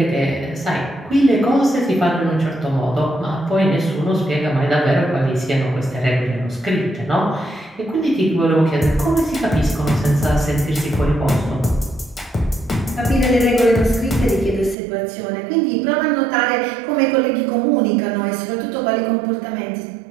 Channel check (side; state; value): left; drops out; at 14.8 s